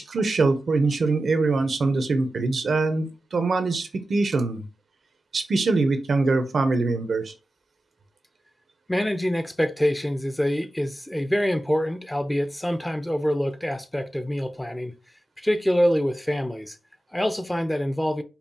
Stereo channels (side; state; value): both; normal; correlation 0.93